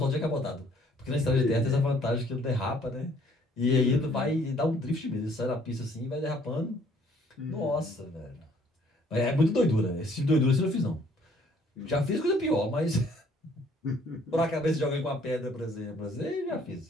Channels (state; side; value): normal; both; correlation 0.61